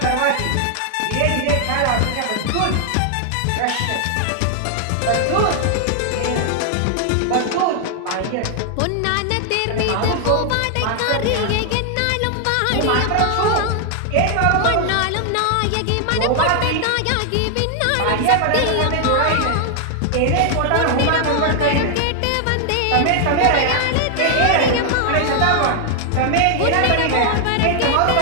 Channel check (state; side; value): different; both; correlation 0.00